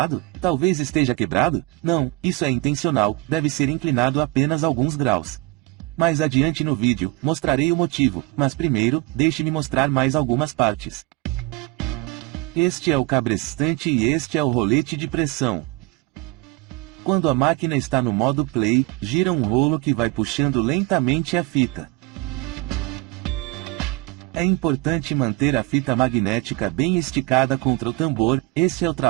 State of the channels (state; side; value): quieter; left; 22.1 dB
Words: Talvez esteja quebrado? Não, isso é intencional, deve ser inclinado apenas alguns graus. Mais adiante no vídeo, mostrarei o motivo, mas primeiro, deixe-me mostrar mais algumas partes. Este é o cabrestante e este é o rolete de pressão. Quando a máquina está no modo play, gira um rolo que vai puxando lentamente a fita. É importante manter a fita magnética bem esticada contra o tambor, esse é o